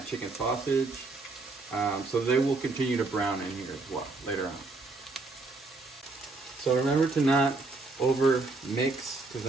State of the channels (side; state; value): left; quieter; 3.5 dB